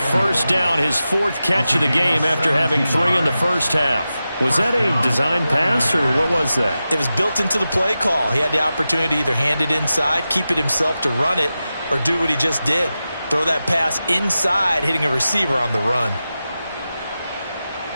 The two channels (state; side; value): inverted; both; correlation -0.93